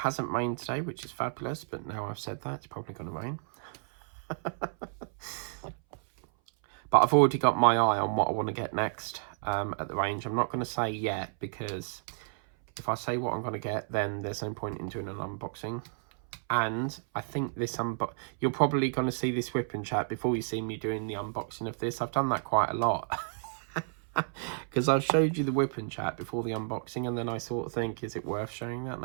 rained today, which is fabulous, but now I've said that, it's probably going to rain. But I've already got my eye on what I want to get next at the range. I'm not going to say yet, because if I say what I'm going to get, then there's no point in doing an unboxing. And I think this you're probably going to see this whipping chat before you see me doing the unboxing of this. I've done that quite a lot. Because I've showed you the whipping chat before the unboxing, and then I sort of think, is it worth showing that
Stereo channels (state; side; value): silent; left; 57 dB below the other